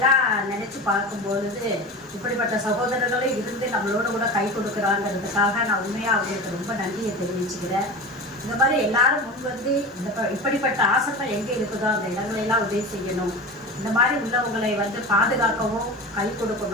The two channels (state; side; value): normal; both; correlation 0.30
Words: நினச்சி பார்க்கும்பொழுது இப்படிப்பட்ட சகோதரர்களும் இருந்து நம்மளோட கூட கை கொடுக்குறாங்கிறதுக்காக நான் உண்மையாக அவங்களுக்கு ரொம்ப நன்றியை தெரிவிச்சுக்கிறேன். இந்த மாதிரி எல்லாரும் இப்படிப்பட்ட ஆசிரமம் எங்கே இருக்குதோ அந்த இடங்களெல்லாம் உதவி செய்யணும். இந்த மாதிரி உள்ளவங்களை பாதுகாக்கவும் கை